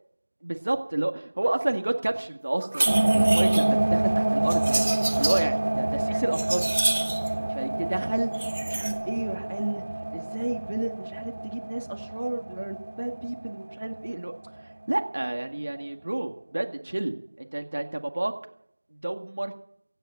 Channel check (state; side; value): inverted; both; correlation -1.00